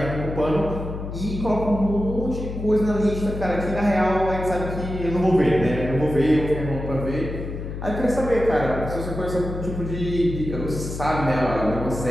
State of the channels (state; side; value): noise; left; hum, 7 dB below the sound